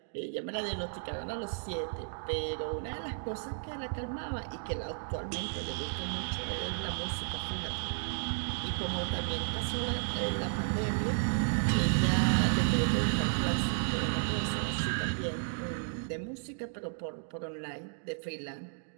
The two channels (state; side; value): silent; left; digital silence